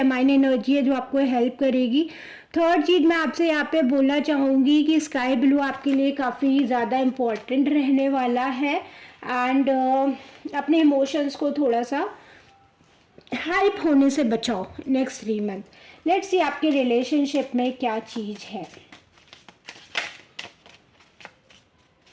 एनर्जी है जो आपको हेल्प करेगी। थर्ड चीज़ मैं आपसे यहाँ पे बोलना चाहूँगी कि स्काई ब्लू आपके लिए काफ़ी ज़्यादा इम्पोर्टेंट रहने वाला है। एंड अपने इमोशंस को थोड़ा सा हाइप होने से बचाओ नेक्स्ट 3 मंथ। लेट्स सी आपके रिलेशनशिप में क्या चीज़ है।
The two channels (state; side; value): identical; both; correlation 1.00